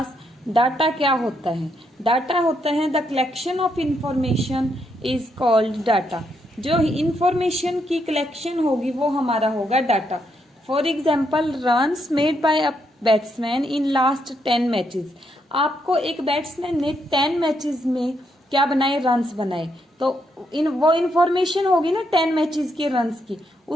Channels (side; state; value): both; normal; correlation 0.78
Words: डाटा क्या होता है। डाटा होता है the collection of information is called data. जो इंफॉर्मेशन की कलेक्शन होगी वो हमारा होगा data. For example runs made by a batsman in last 10 matches. आपको एक बैट्समैन ने 10 मैचेस में क्या बनाए? रन्स बनाए। तो वो इंफॉर्मेशन होगी ना 10 मैचेस के रन्स की,